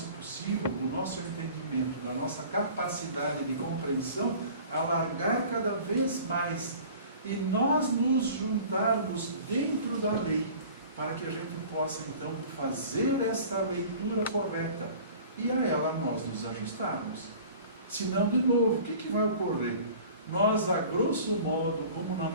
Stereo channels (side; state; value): both; inverted; correlation -0.44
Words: possível, do nosso entendimento, da nossa capacidade de compreensão, alargar cada vez mais e nós nos juntarmos dentro da lei, para que a gente possa então fazer esta leitura correta e a ela nós nos ajustarmos. Senão, de novo, o que vai ocorrer? Nós, a grosso modo, como na